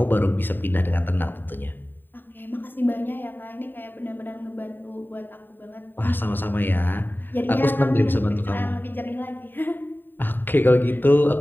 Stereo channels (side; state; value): right; late; 0.093 ms